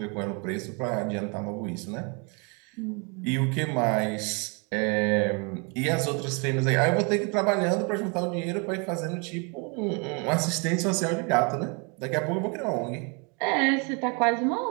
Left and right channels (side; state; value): left; quieter; 33.5 dB